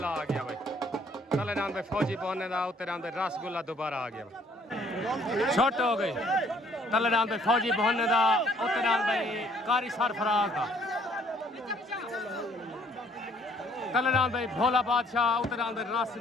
आ गया भाई तले डांद भाई फौजी पहुंचने दा उत्तरान भाई रसगुल्ला दोबारा आ गया भाई छोट हो गई तले डांद भाई फौजी पहुंचने दा उत्तरान भाई कारी सरफराज दा तले डांद भाई भोला बादशाह उत्तरान भाई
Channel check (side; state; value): both; normal; correlation 0.61